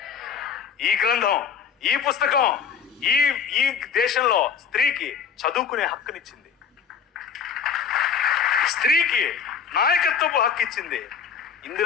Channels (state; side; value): quieter; right; 7.0 dB